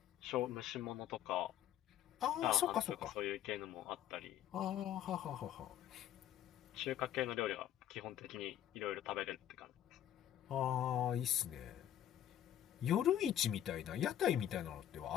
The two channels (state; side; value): quieter; right; 11.1 dB